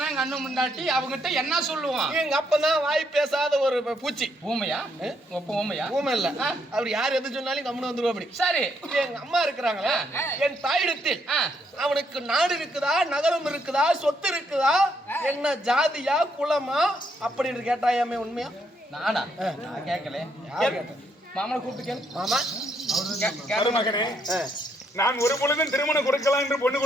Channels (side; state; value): both; normal; correlation 0.74